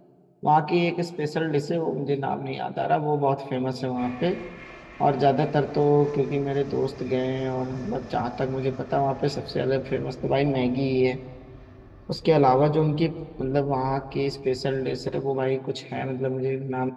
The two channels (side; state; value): both; identical; correlation 1.00